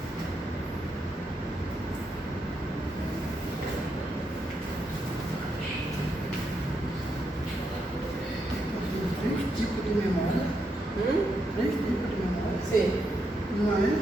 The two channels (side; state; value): both; normal; correlation 0.81